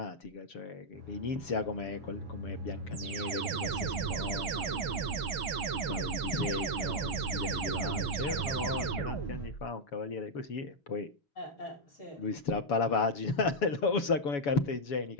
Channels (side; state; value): right; late; 6.2 ms